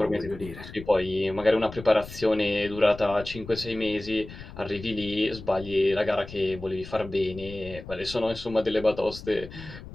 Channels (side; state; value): left; noise; rumble, 14 dB below the sound